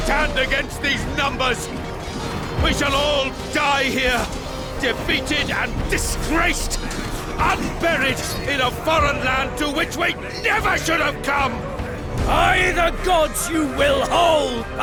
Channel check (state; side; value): identical; both; correlation 1.00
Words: Against these numbers, we shall all die here, defeated and disgraced, unburied in a foreign land to which we never should have come. By the gods you will hold,